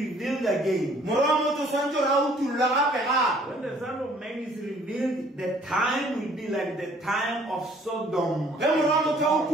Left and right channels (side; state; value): both; normal; correlation 0.58